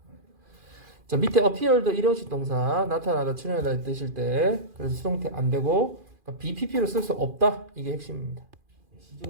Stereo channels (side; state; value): left; late; 2.4 ms